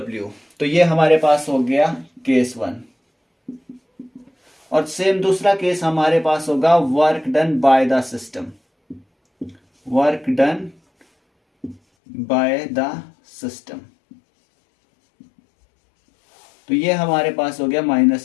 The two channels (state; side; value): drops out; right; at 11.8 s